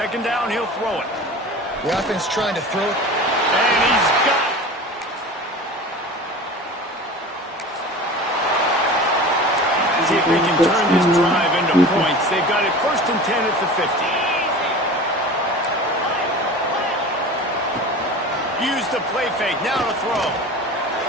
down, he'll throw it. The offense trying to throw it. And he's got it. See if they can turn this drive into points. They've got it first and 10 at the 50. Use the play fake. Now to throw.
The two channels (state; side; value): normal; both; correlation 0.36